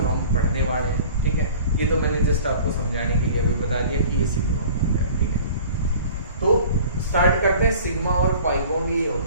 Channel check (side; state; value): both; inverted; correlation -0.45